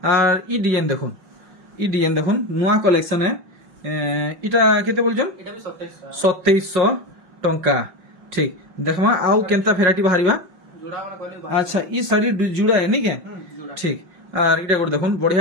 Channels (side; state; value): left; late; 5.6 ms